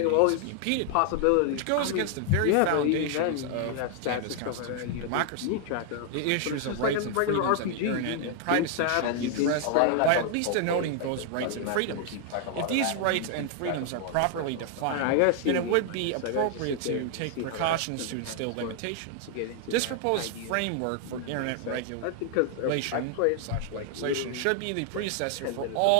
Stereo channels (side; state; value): both; different; correlation 0.00